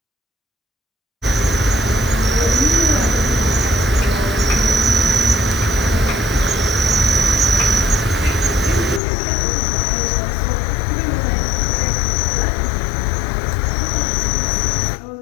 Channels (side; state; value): right; drops out; at 9.0 s